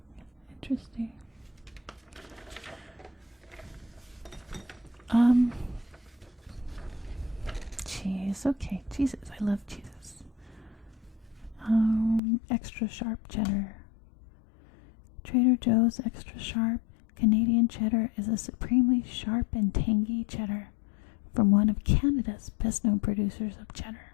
Interesting. Cheese. Okay, cheeses. I love cheeses. Extra sharp cheddar. Trader Joe's extra sharp Canadian cheddar is a supremely sharp and tangy cheddar from one of Canada's best-known producers of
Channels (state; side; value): drops out; right; at 12.2 s